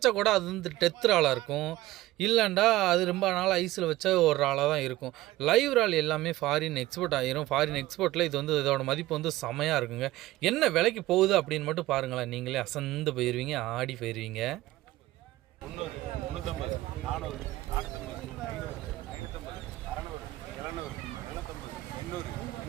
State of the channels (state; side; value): quieter; left; 17.2 dB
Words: கூட அது வந்து டெத் இறாலாக இருக்கும், இல்லைண்டா அது ரொம்ப நாள் ஐஸில் வச்ச ஒரு இறாலாக தான் இருக்கும். லைவ் இறால் எல்லாமே ஃபாரின் எக்ஸ்போர்ட் ஆகிரும். ஃபாரின் எக்ஸ்போர்ட்டில் இது வந்து இதோட மதிப்பு வந்து செமையாக இருக்குங்க. என்ன விலைக்கு போகுது அப்படின்னு மட்டும் பாருங்களேன், நீங்களே அசந்து போயிடுவீங்க, ஆடி போயிடுவீங்க. 300, 350, 400, 450, 700, 800,